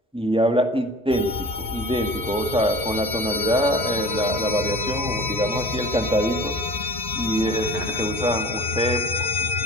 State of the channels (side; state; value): both; normal; correlation 0.40